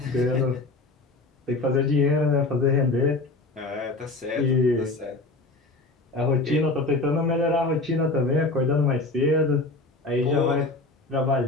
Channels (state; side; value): quieter; right; 3.2 dB